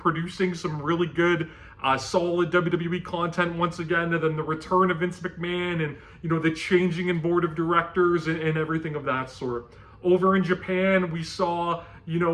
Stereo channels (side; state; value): both; identical; correlation 1.00